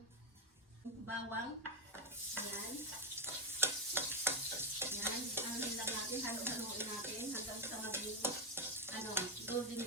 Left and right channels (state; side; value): normal; both; correlation 0.06